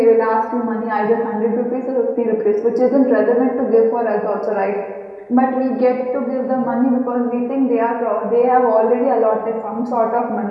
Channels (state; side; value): identical; both; correlation 1.00